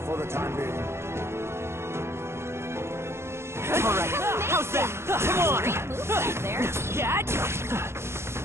for the time being. Alright, how's that? Come on! Great move right there. Catch!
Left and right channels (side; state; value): left; late; 0.12 ms